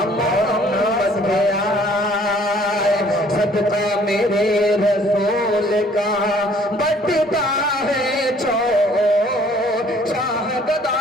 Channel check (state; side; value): normal; both; correlation 0.58